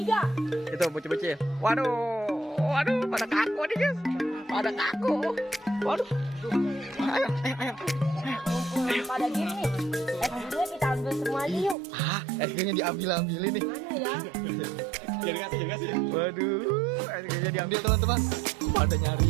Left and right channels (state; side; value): drops out; left; at 11.8 s